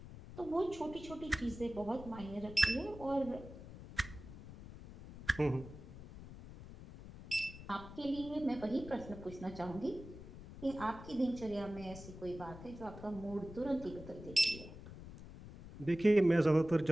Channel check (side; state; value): left; noise; rumble, 14 dB below the sound